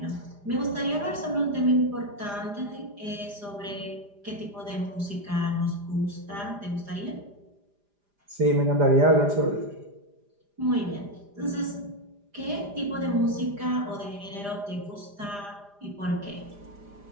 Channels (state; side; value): late; left; 4.9 ms